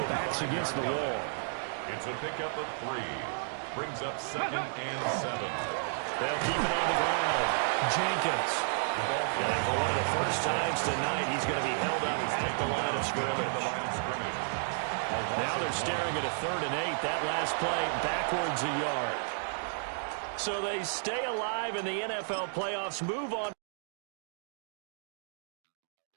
backs against the wall. It's a pickup of 3. Brings up 2nd and 7. They'll keep it on the ground. Jenkins. And for one of the first times tonight, he's going to be held up at the line of scrimmage. Now they're staring at a 3rd and 8. That last play backwards a yard. So they stay alive in the NFL playoffs, move on.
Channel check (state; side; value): silent; left; digital silence